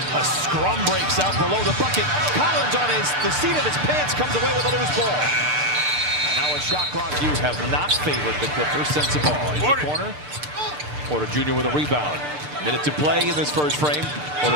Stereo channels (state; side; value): late; left; 6.7 ms